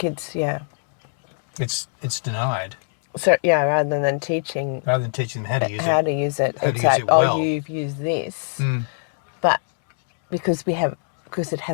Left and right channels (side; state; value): right; silent; digital silence